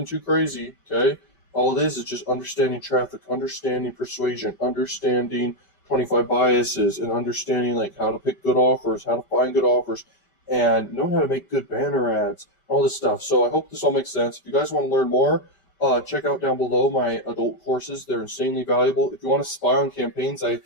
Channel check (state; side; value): late; right; 5.1 ms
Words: too crazy, okay? All it is just understanding traffic, understanding persuasion, understanding 25 biases, and understanding like how to pick good offers, how to find good offers, and knowing how to make good banner ads, all this stuff. So I hope this all makes sense. If you guys want to learn more, check out down below my adult courses. They're insanely valuable. If you want to spy on campaigns, I